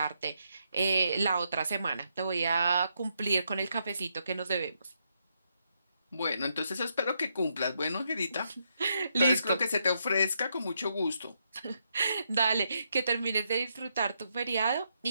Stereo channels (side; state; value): both; inverted; correlation -0.79